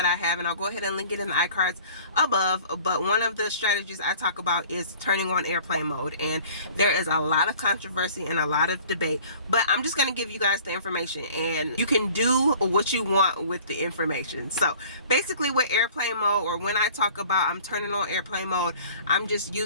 I have, and I'll go ahead and link it in the iCards above, but one of the strategies I talk about is turning on airplane mode, and there is a lot of controversy and a lot of debate, but I'm just going to give you guys the information, and you can do what you want with the information. So basically with airplane mode, or when I talk about I'm turning on airplane mode, I'm just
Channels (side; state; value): both; inverted; correlation -0.49